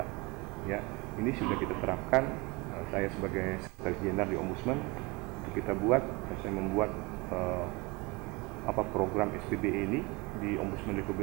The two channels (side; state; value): left; quieter; 25.5 dB